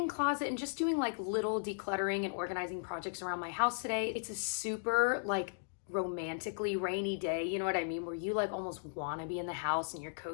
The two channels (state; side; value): silent; right; digital silence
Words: closet and just doing like little decluttering and organizing projects around my house today. It's a super like romantically rainy day, you know what I mean, where you like almost want to be in the house and you're